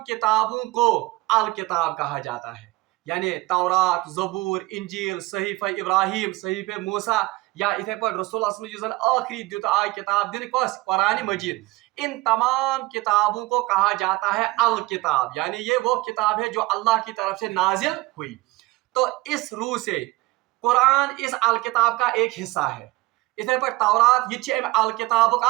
किताबों को अल किताब कहा जाता है, यानी तौरात, ज़बूर, इंजील, सहीफ़ा इब्राहिम, सहीफ़ा मूसा, या इथे पर रसूल जो आखिरी दुत आय किताब दिन कस कुरान मजीद, इन तमाम किताबों को कहा जाता है अल किताब, यानी ये वो किताब है जो अल्लाह की तरफ से नाजिल हुई। तो इस रूह से कुरान इस अल किताब का एक हिस्सा है। इथे पर तौरात ये अल किताब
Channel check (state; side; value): quieter; left; 20.4 dB